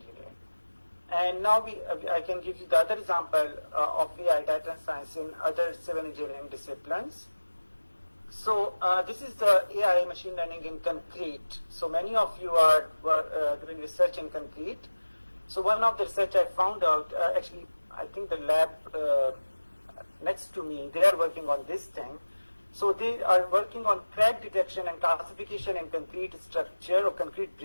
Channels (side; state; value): both; inverted; correlation -1.00